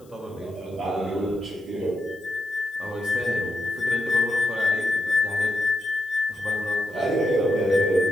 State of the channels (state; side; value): noise; left; hiss, 30 dB below the sound